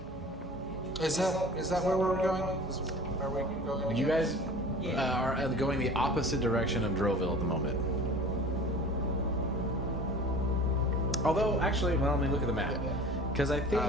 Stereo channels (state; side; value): normal; both; correlation 0.42